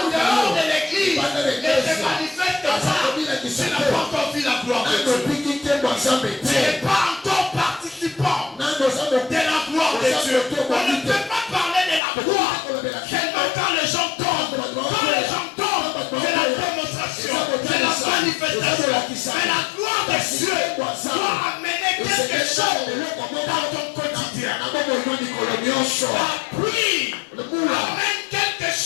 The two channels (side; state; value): right; drops out; at 12.0 s